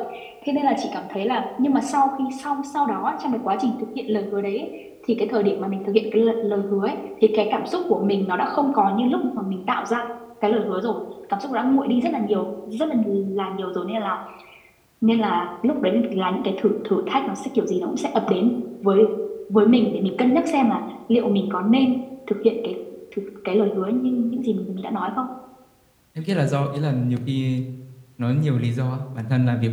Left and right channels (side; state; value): both; identical; correlation 1.00